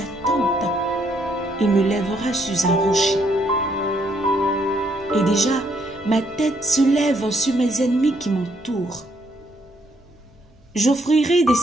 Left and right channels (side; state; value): both; normal; correlation 0.71